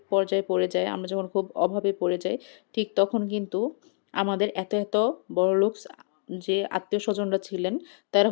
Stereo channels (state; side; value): silent; right; 60 dB below the other